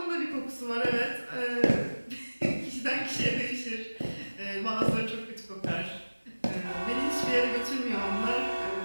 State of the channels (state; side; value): inverted; both; correlation -1.00